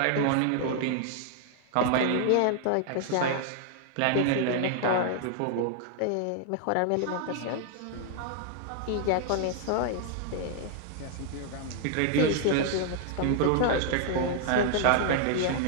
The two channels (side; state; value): both; different; correlation 0.00